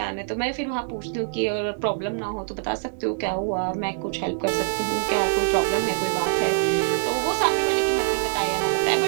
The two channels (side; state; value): left; silent; 62 dB below the other